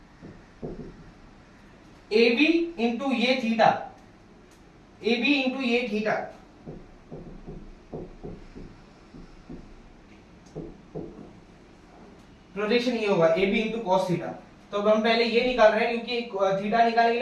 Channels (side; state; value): both; identical; correlation 1.00